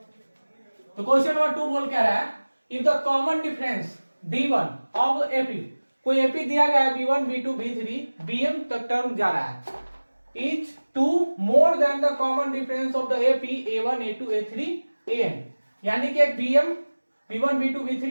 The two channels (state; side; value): inverted; both; correlation -1.00